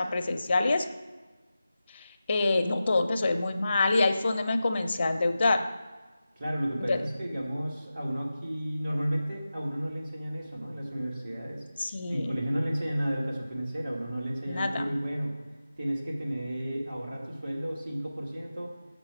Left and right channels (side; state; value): both; inverted; correlation -0.93